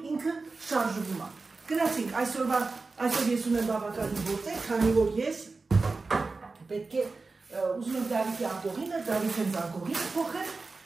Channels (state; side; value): quieter; left; 3.9 dB